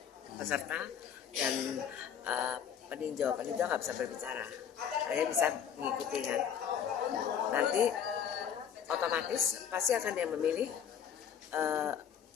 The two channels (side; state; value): right; quieter; 8.3 dB